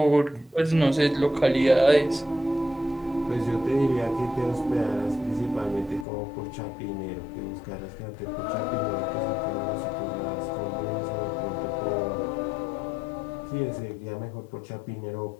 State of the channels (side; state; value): right; drops out; at 6.1 s